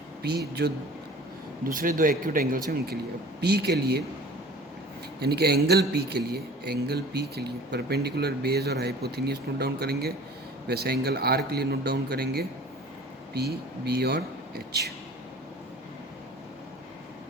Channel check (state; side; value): normal; both; correlation 0.45